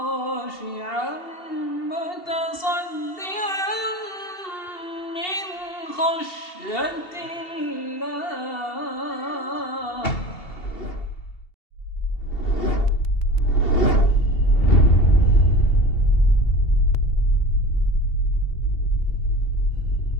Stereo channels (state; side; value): late; right; 2.7 ms